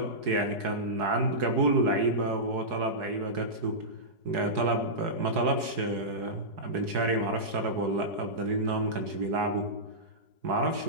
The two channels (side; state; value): left; late; 4.7 ms